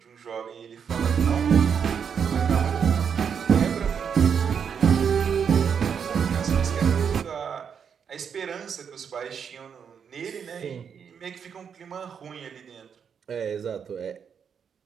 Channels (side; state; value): left; quieter; 7.2 dB